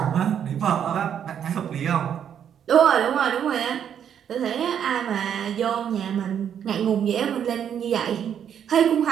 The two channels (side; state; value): left; quieter; 8.8 dB